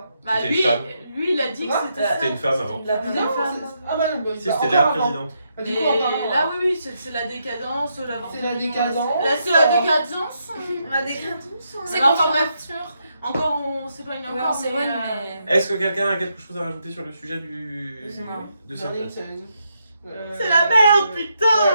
bah, C'était une lui, femme. lui, il a dit que Quoi c'était ça. C'était une femme avant. La Une femme. femme. Ah bah non, bah, Si, bah, c'était encore la avant. présidente. Bah, du Mais coup, encore avant. là, oui, c'est la décadence. C'est la décadence. Là, c'est la décadence. La décadence. C'est Alors, enfin, contre bref, encore, on s'éloigne Ouais, encore. on s'éloigne, mais, mais. Est-ce que quelqu'un a quelque chose à rajouter sur le sujet Non. de J'en ai une, cette C'est la merde, putain. Ouais,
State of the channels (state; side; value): inverted; both; correlation -0.80